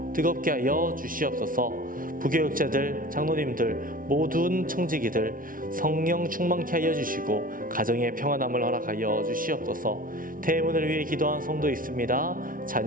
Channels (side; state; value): left; late; 0.40 ms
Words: 뜨겁게 하여 주시옵소서. 부교육자들, 장로님들, 모든 청지기들 성령 충만케 하여 주시고 가정의 평안함을 허락하여 주시옵소서. 태문을 위해 기도한 성도 있습니다.